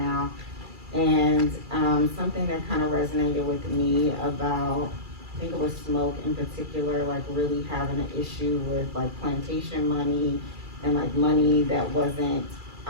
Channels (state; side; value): late; left; 2.3 ms